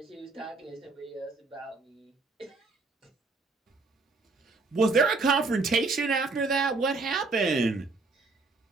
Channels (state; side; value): quieter; left; 3.8 dB